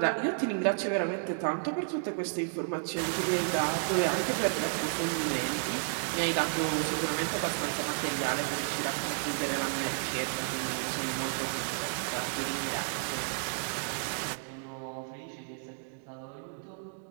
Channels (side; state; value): left; silent; digital silence